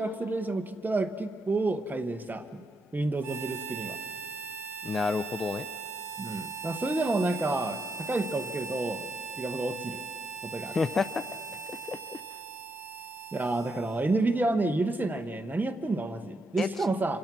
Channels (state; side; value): normal; both; correlation 0.80